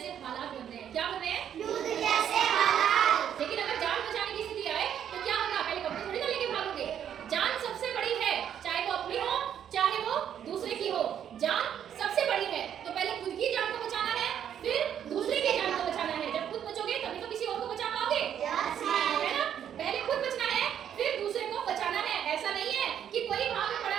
हालात बन रहे हैं। क्या बन रहे हैं? युद्ध जैसे हालात। लेकिन अगर जान बचाने की स्थिति आए तो क्या होगा? पहले कपड़े थोड़ी ना लेके भागोगे। जान सबसे बड़ी है, चाहे वो अपनी हो चाहे वो दूसरे की हो, जान सबसे बड़ी है। तो पहले खुद की जान को बचाना है, फिर दूसरे की जान को बचाना है। जब खुद बचोगे तभी तो किसी और को बचा पाओगे, है ना? पहले खुद बचना है, फिर दूसरे को बचाना है। ऐसा नहीं है कि कोई वहां पे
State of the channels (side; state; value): left; quieter; 9.4 dB